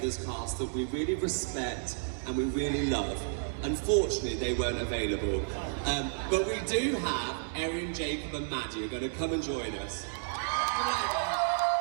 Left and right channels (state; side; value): silent; left; digital silence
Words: cast that we really respect and we really love. Unfortunately, they weren't available. But we do have Erin, Jacob and Maddie are going to come and join us.